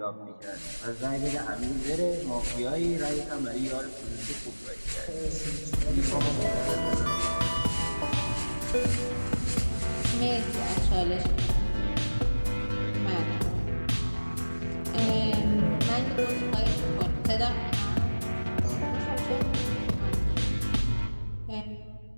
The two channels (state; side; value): inverted; both; correlation -1.00